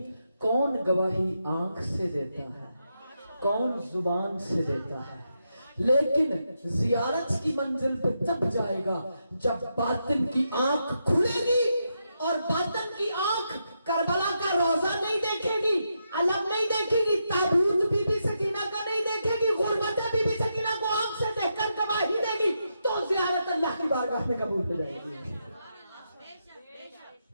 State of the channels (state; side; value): inverted; both; correlation -0.83